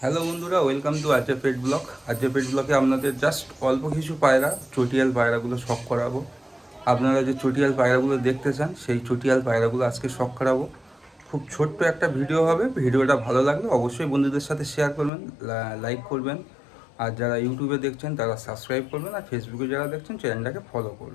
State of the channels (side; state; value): right; drops out; at 15.1 s